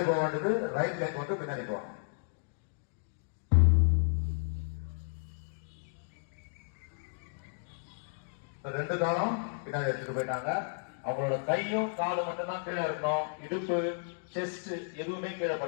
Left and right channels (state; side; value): silent; right; digital silence